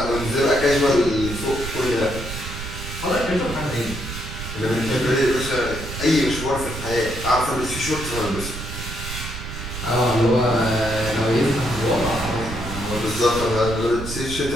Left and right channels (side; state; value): right; noise; rumble, 8 dB below the sound